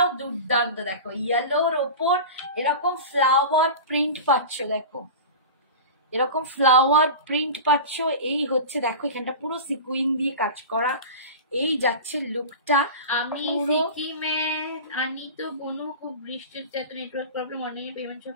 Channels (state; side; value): inverted; both; correlation -0.31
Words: দুর্দান্ত, দেখো ইয়েলোর ওপর এরকম ফ্লাওয়ার প্রিন্ট পাচ্ছ, দেখো এরকম ফ্লাওয়ার প্রিন্ট পাচ্ছ। এই হচ্ছে দেখো এখানটা পুরো সিকুইন দিয়ে কাজ করা, এই যাচ্ছে লুকটা। আমি সিকিমে আনি তো বনু, খুব বৃষ্টির এত নেটওয়ার্ক প্রবলেম, অনেক পেমেন্ট সব